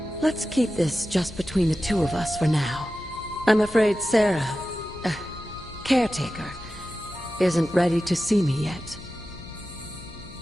let's keep this just between the two of us for now. I'm afraid Sarah, Caretaker, isn't ready to see me yet.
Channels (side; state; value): left; noise; hum, 17 dB below the sound